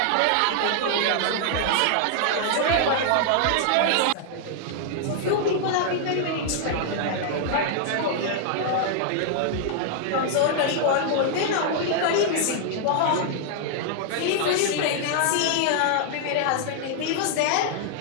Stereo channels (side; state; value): both; different; correlation -0.01